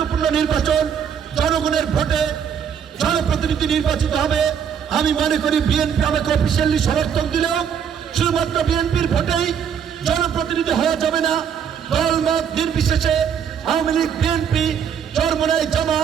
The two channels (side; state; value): left; quieter; 7.9 dB